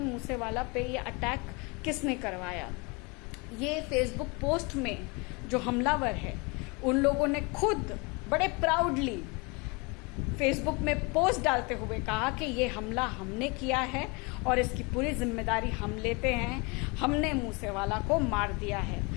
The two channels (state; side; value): quieter; right; 28.8 dB